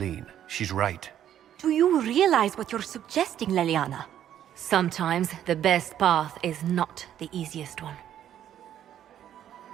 She's right. Do you realize what you're suggesting, Leliana? Sometimes the best path is not the easiest one.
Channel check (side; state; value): left; quieter; 10.7 dB